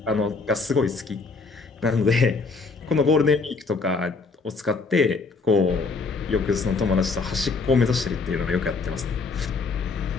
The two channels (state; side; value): quieter; right; 4.2 dB